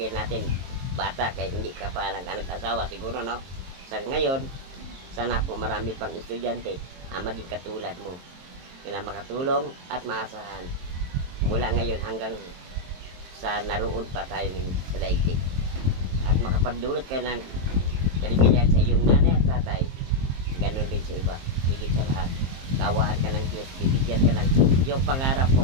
natin bata kahit hindi ka pa nag-asawa siguro, no? Sa ngayon, sana po marami pang estudyante ang maging katulad mo na makatulong at maasahan mula ngayon hanggang sa naroon pa tayo sa daigdig at makapagdulot ka ng kaligayahan sa iyong nanay at tatay. Ganun din sa iba. Higit sa lahat, kawaan ka ng Diyos, bibigyan ka ng yung pangarap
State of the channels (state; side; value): late; left; 22 ms